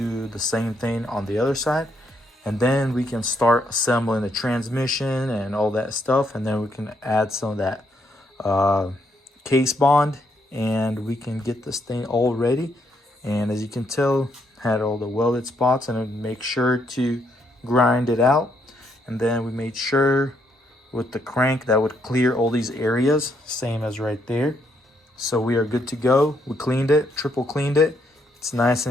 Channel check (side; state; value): both; normal; correlation 0.74